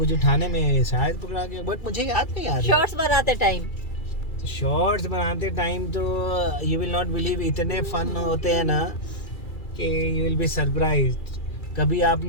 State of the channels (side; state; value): right; late; 2.3 ms